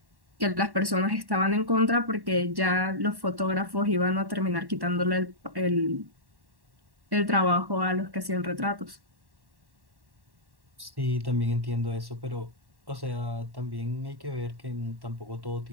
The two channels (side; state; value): left; late; 1.1 ms